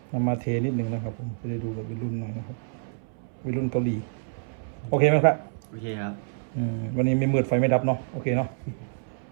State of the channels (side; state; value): left; silent; 60 dB below the other